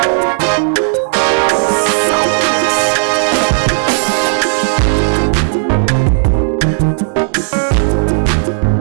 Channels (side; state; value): left; silent; digital silence